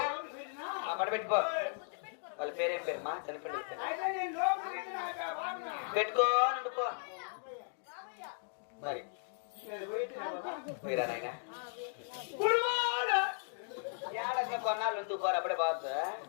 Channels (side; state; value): right; silent; digital silence